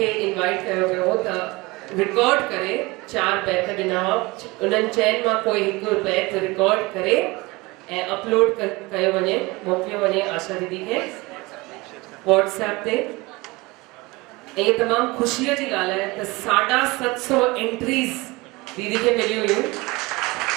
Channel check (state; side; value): quieter; left; 23.2 dB